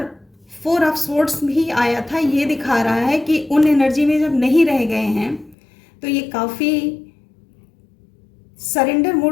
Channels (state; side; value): drops out; right; at 5.6 s